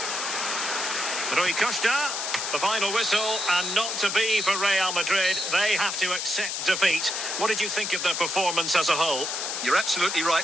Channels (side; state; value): left; noise; hiss, 3 dB below the sound